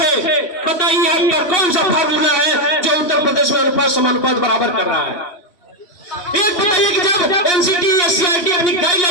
बताइए आपका कौन सा फार्मूला है जो उत्तर प्रदेश में अनुपात समानुपात बराबर कर रहा है? एक बताइए कि जब एनसीटी या सीआईटी अपनी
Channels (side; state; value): right; late; 3.0 ms